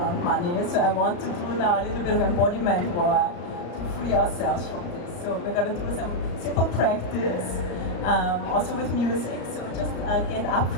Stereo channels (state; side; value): late; right; 34 ms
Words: money. So I want to do now a little bit of embodiment work to free ourselves from this. So we're going to do some simple practice, also with music. So just get up